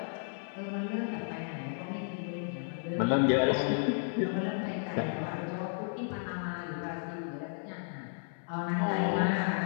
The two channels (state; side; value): silent; right; 56 dB below the other